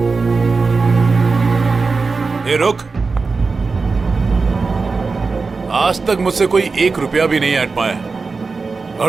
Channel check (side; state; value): left; quieter; 4.3 dB